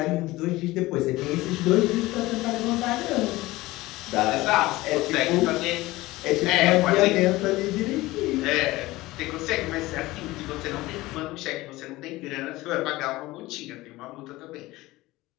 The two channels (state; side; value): quieter; right; 19.0 dB